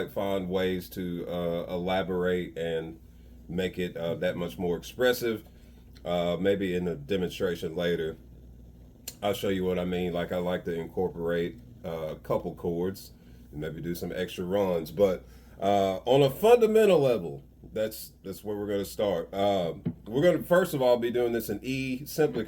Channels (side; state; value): both; identical; correlation 1.00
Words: find ways to elaborate and make it that much more expressive. Maybe in a demonstration later, I'll show you what I mean. Like I like to incorporate a couple chords and maybe do some extra runs. But on a fundamental level, that's where we're going to start. We're going to first of all be doing this in E simply